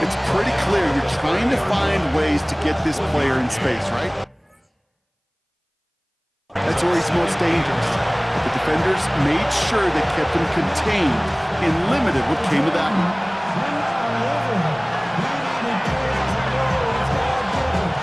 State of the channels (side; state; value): both; identical; correlation 1.00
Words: pretty clear you're trying to find ways to get this player in space, right? That's where he's most dangerous. But the defenders made sure they kept him contained and limited what came of that one.